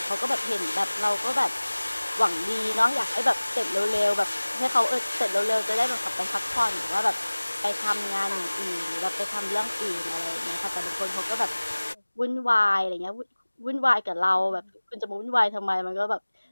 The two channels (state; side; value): inverted; both; correlation -1.00